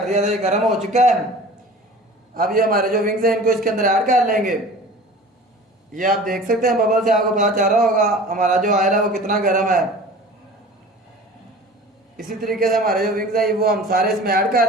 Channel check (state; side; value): normal; both; correlation 0.41